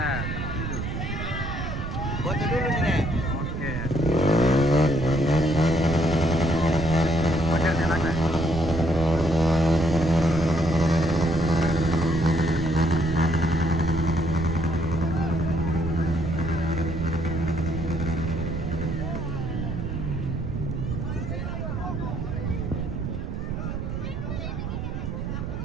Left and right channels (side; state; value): right; noise; rumble, 4 dB below the sound